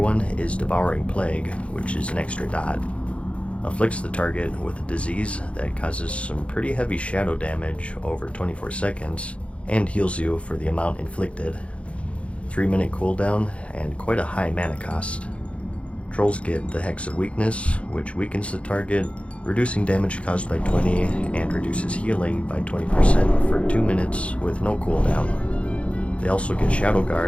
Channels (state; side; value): late; right; 0.062 ms